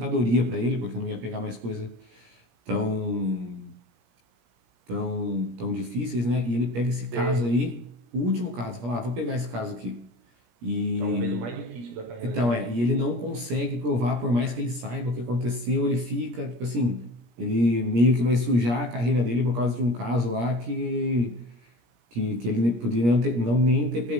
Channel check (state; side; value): late; left; 17 ms